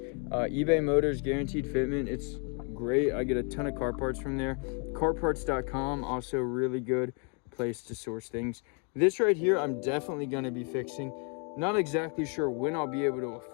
Motors guaranteed fitment. It's great. I get a ton of car parts from there. Carparts.com, also really good place to source things. This right here, I'm definitely going to be fixing. Not exactly sure when I'll be able to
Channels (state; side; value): quieter; right; 36.0 dB